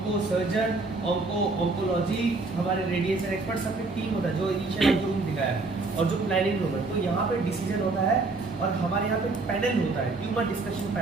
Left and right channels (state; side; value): quieter; left; 3.6 dB